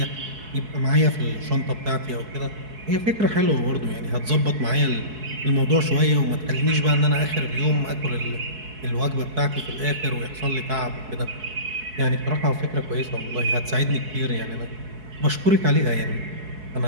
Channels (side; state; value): left; late; 4.7 ms